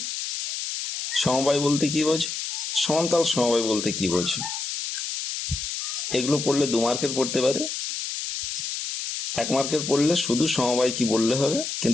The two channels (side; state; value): left; noise; hiss, 4 dB below the sound